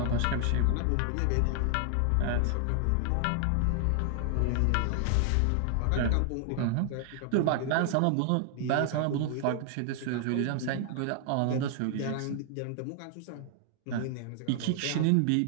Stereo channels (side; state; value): both; different; correlation 0.00